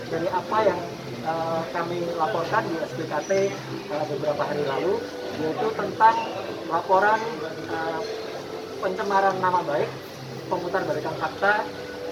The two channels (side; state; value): both; identical; correlation 1.00